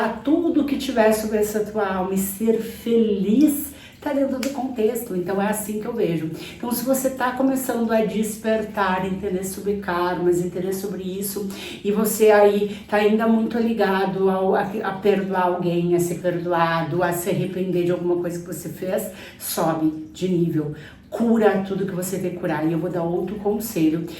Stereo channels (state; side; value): identical; both; correlation 1.00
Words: tudo que tiver sobre essa tua alma e ser feliz, tá dentro do contexto. Então é assim que eu vejo. Então se você tá começando a despertar, entender sobre karmas, entender sobre isso, e você aí tá ainda muito ligado a perdoar alguém, a ser perdoado, a se arrepender de alguma coisa que você fez, sobe de nível. Cura tudo que você tem que curar. E eu vou dar outro conselho.